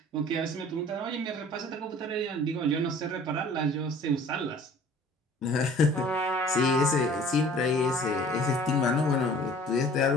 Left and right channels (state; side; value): normal; both; correlation 0.49